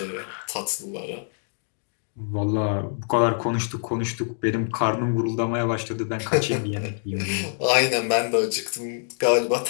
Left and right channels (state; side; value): silent; right; digital silence